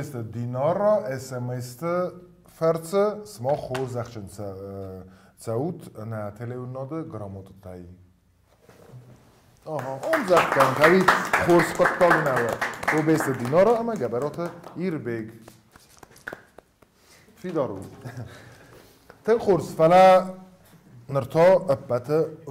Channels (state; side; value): identical; both; correlation 1.00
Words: دینار را SMS فرس سما خور زخشن سعود نه تلیوناده گراماتو تایی اون زخت کن که خورس قطال نوه کوبست دینار را اما گبرات ایربیگ فی دارو تن خورس فلا نرتا ابت